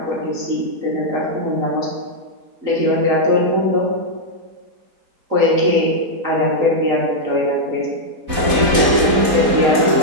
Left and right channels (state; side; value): late; left; 4.1 ms